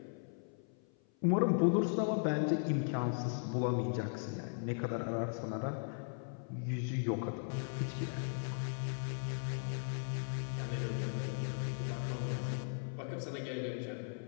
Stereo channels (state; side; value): silent; right; 53 dB below the other